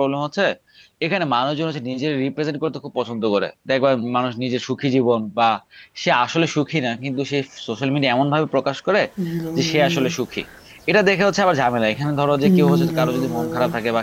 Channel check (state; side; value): identical; both; correlation 1.00